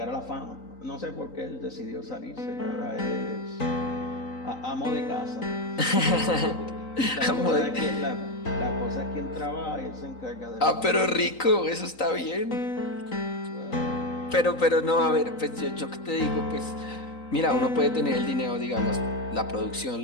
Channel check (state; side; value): late; right; 3.9 ms